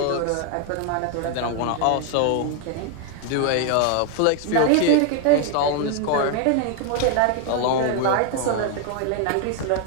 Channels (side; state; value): both; different; correlation 0.00